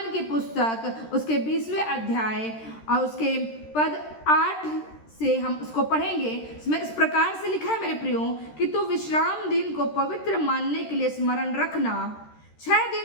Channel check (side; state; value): right; late; 13 ms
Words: की पुस्तक उसके 20वें अध्याय और उसके पद 8 से हम उसको पढ़ेंगे। इसमें इस प्रकार से लिखा है, मेरे प्रियो, कि तू विश्राम दिन को पवित्र मानने के लिए स्मरण रखना। 6